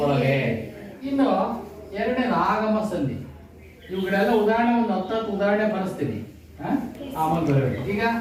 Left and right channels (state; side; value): identical; both; correlation 1.00